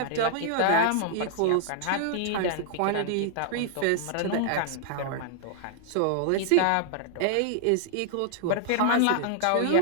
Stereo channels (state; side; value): different; both; correlation -0.01